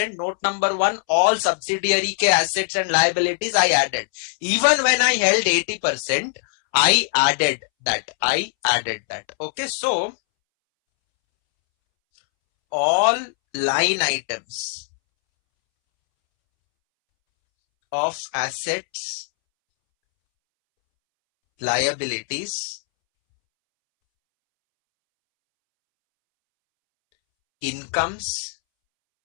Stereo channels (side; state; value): right; silent; 65 dB below the other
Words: note number 1, all subsidiary ke assets and liabilities I added. Even when I held 80%, I added that. Okay, so all line items of assets, liabilities, incomes,